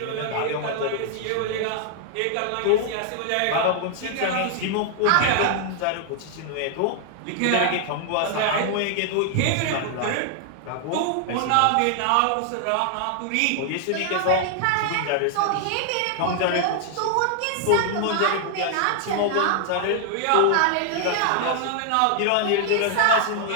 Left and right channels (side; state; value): both; different; correlation 0.00